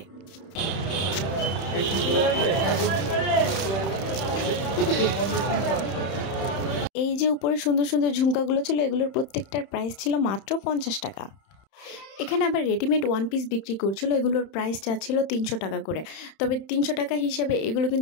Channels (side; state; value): right; late; 31 ms